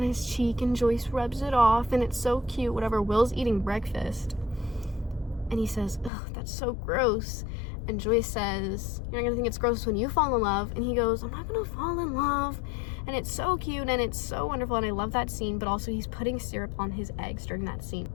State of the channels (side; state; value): right; drops out; at 6.1 s